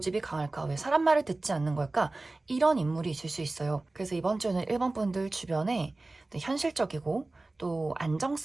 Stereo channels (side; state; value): left; quieter; 3.1 dB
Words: 강할까, 왜 사람 말을 듣지 않는 걸까, 이런 인물이 있을 수 있어요. 그래서 이번 주는 1번 분들 주변에 현실적이고 또